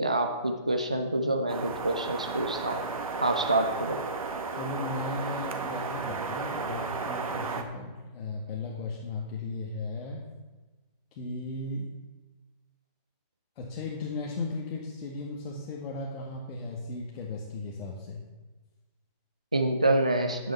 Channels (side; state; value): both; inverted; correlation -0.49